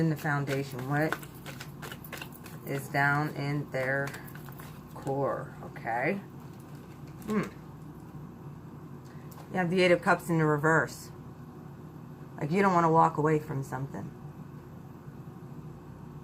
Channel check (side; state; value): both; identical; correlation 1.00